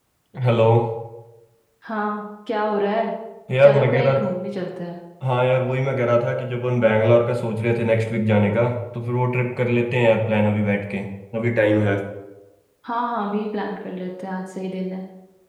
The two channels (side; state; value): both; identical; correlation 1.00